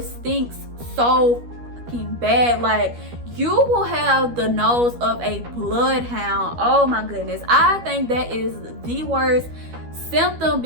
stinks so fucking bad. Like, you will have the nose of a bloodhound. Oh my goodness, I think that is the worst symptom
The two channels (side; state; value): left; late; 12 ms